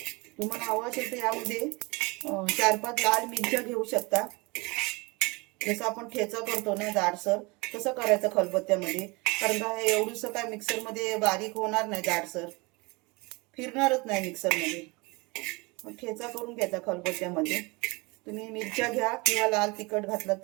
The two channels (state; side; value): quieter; left; 26.4 dB